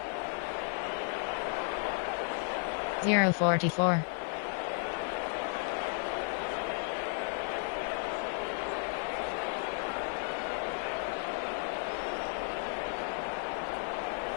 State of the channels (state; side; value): silent; right; 55 dB below the other